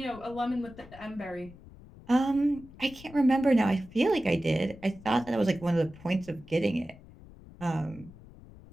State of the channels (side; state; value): left; noise; rumble, 20 dB below the sound